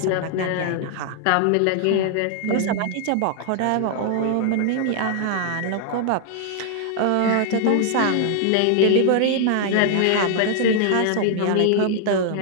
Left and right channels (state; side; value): different; both; correlation 0.00